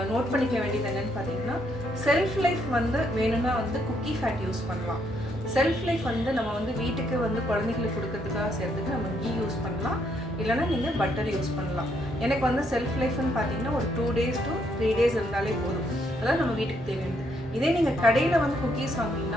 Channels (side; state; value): both; normal; correlation 0.73